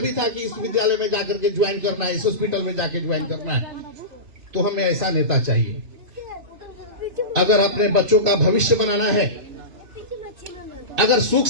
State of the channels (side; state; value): left; late; 3.0 ms